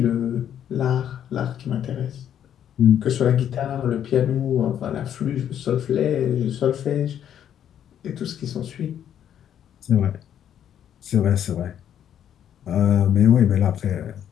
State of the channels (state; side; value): quieter; right; 9.8 dB